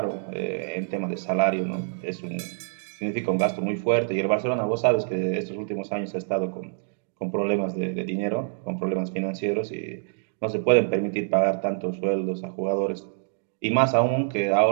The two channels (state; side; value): silent; left; digital silence